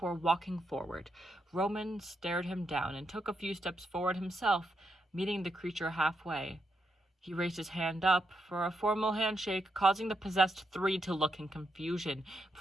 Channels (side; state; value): both; normal; correlation 0.82